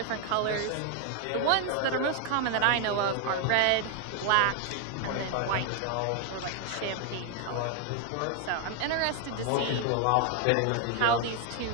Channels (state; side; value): different; both; correlation 0.01